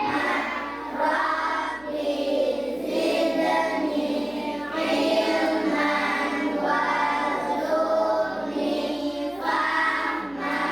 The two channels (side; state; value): left; noise; hum, 26 dB below the sound